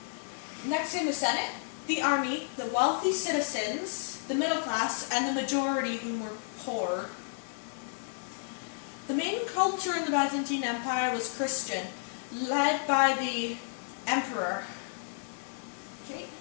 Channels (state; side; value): silent; right; digital silence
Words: Next in the Senate, the army, the wealthy citizens, the middle class, and the majority who were poor. The main culture in the Byzantine Empire was Christian, led by the emperor. Okay.